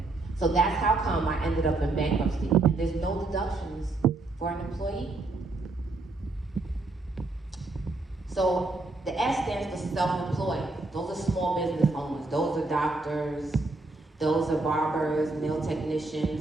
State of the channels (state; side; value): quieter; left; 3.2 dB